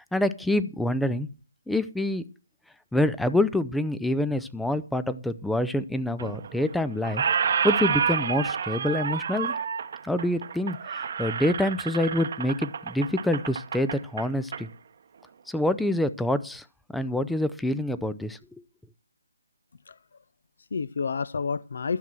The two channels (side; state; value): both; normal; correlation 0.44